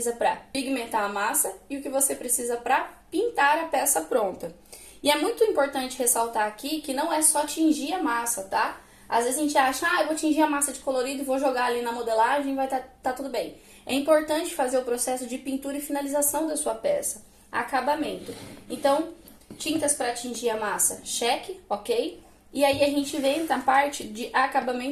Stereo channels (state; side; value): identical; both; correlation 1.00